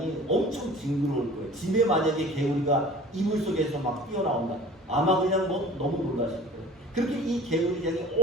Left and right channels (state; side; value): normal; both; correlation 0.45